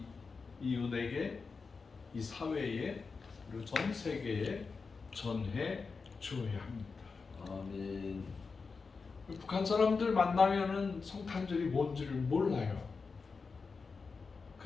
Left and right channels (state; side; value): quieter; right; 4.7 dB